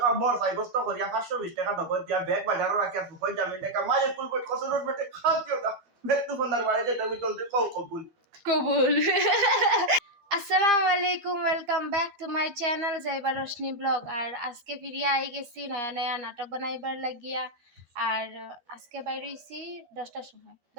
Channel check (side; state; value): left; late; 13 ms